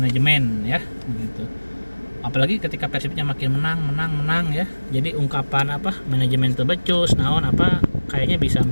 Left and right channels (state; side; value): inverted; both; correlation -1.00